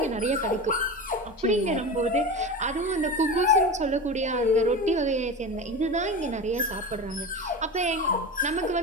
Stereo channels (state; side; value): normal; both; correlation 0.27